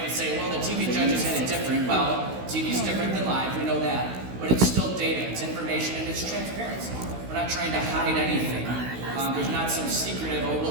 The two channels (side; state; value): left; late; 16 ms